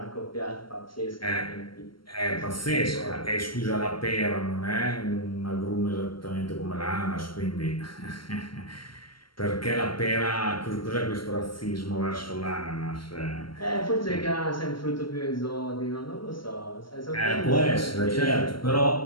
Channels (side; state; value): right; late; 0.73 ms